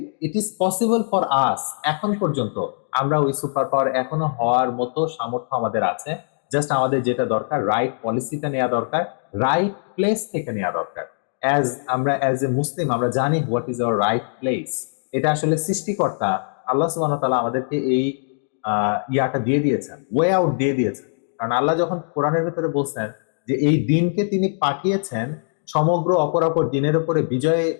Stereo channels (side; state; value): right; silent; digital silence